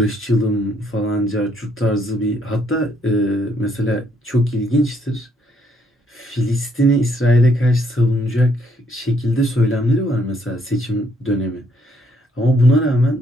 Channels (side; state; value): both; normal; correlation 0.69